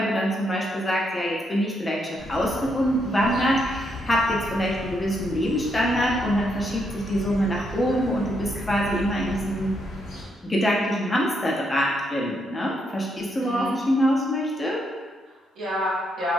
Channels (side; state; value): both; normal; correlation 0.77